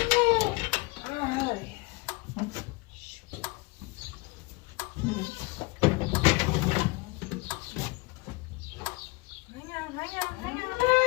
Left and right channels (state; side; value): quieter; right; 25.1 dB